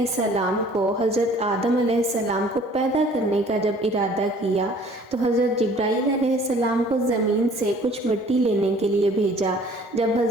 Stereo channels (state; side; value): normal; both; correlation 0.53